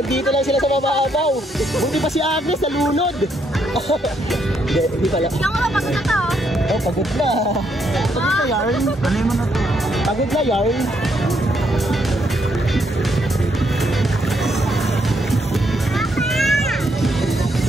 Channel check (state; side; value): normal; both; correlation 0.75